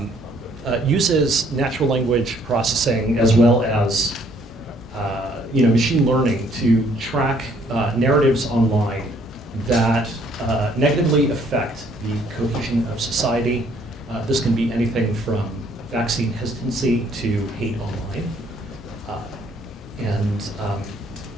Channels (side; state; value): both; normal; correlation 0.64